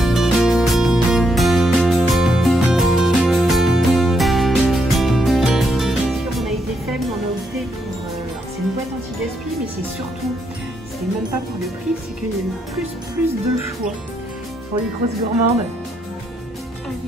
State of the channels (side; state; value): both; normal; correlation 0.77